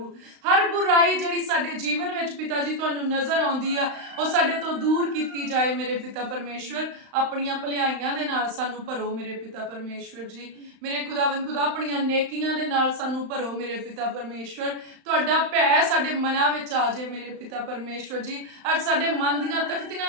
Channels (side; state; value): left; late; 35 ms